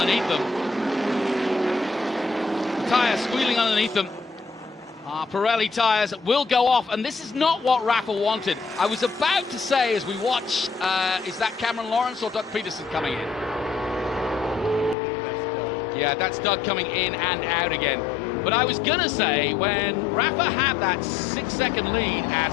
them. The tyres squealing underneath them. Pirelli tyres will go off, and this is not what Rafa wanted. I was about to say, as we watch, is that Cameron Lawrence or Doug Peterson coming in? I believe that's Doug. Yeah, that's Doug coming in and out again. But I was going to say, when Rafa had that 6-second lead,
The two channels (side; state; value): right; drops out; at 15.0 s